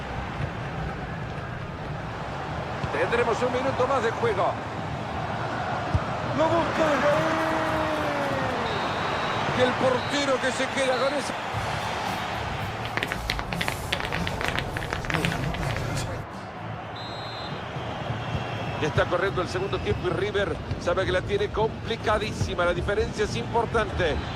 Tendremos un minuto más de juego. Lo busca y el portero que se queda con eso. Ya está corriendo el segundo tiempo y River sabe que la tiene complicadísima. La diferencia es importante.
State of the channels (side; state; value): both; identical; correlation 1.00